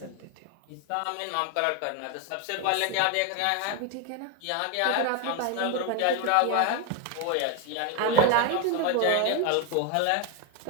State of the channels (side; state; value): both; different; correlation 0.01